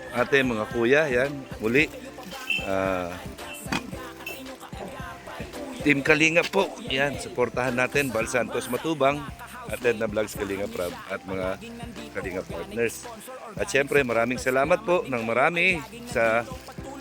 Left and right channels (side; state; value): both; identical; correlation 1.00